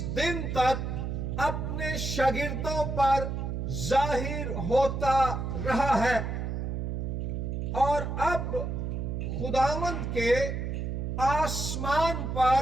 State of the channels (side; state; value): right; noise; hum, 3 dB below the sound